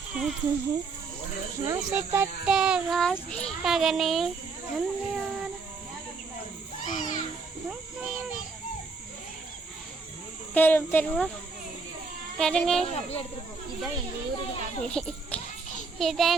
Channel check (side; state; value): left; quieter; 4.4 dB